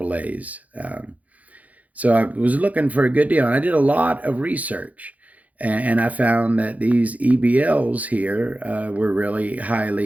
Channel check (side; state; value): left; late; 0.073 ms